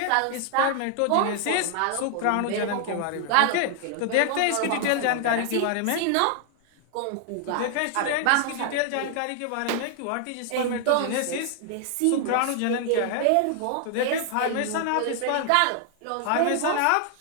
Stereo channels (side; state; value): both; different; correlation 0.00